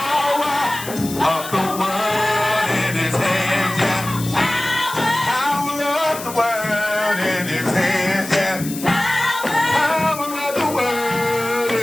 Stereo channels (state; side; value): noise; left; hiss, 11 dB below the sound